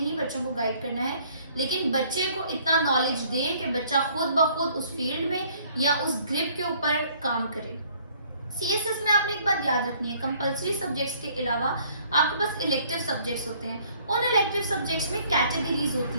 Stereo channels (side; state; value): both; inverted; correlation -0.60